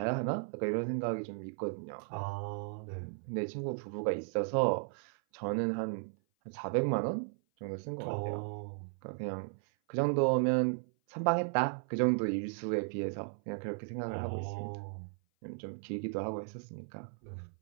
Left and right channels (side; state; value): left; silent; 54 dB below the other